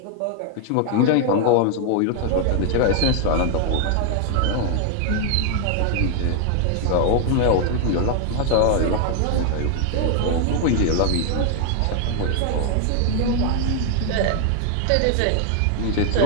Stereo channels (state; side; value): different; both; correlation 0.00